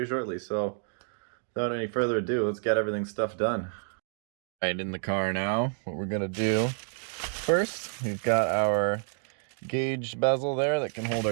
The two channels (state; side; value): silent; left; 58 dB below the other